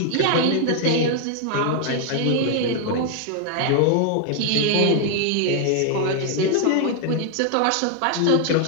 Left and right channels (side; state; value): both; different; correlation 0.00